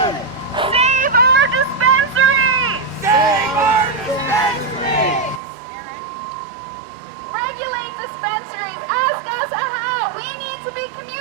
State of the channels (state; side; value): drops out; left; at 5.4 s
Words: Save our dispensaries! Save our dispensaries! Regulate dispensaries! Ask us how! We need to be